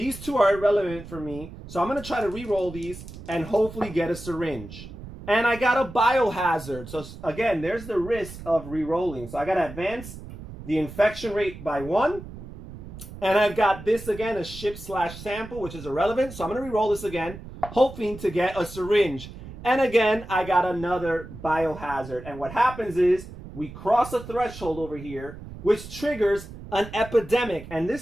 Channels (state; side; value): noise; right; rumble, 14 dB below the sound